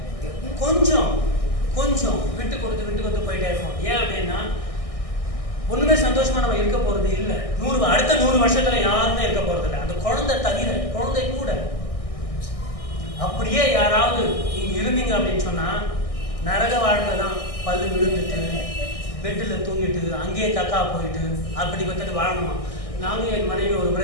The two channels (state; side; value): late; right; 1.6 ms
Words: கொஞ்சம் விட்டு கொடுத்து போயிட்டே இருக்கும். ஏன் அப்படின்னா, ஒண்ணுமே சந்தோஷமா நம்ம இருக்க போறது இல்லை. அடுத்த 100 வருஷத்துல யாருமே இருக்க போறது இல்லை, அந்த குழந்தை தவிர. குழந்தை கூட அப்படியே யாராவது நீங்க இருந்தீங்க அப்படின்னு சொன்னா நரக வாழ்க்கை தான். பல்லு விழுந்துட்டு பெட்டுல தூங்கிட்டு அங்கேயே கக்கா போயிட்டு அப்படி வாழணுமா? நானும் என் மனைவி ஒரு